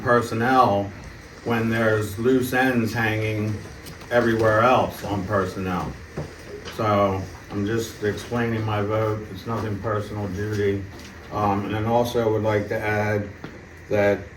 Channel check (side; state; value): both; identical; correlation 1.00